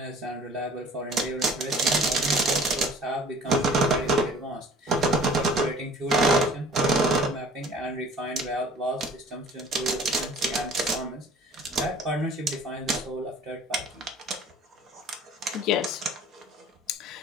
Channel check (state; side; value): normal; both; correlation 0.49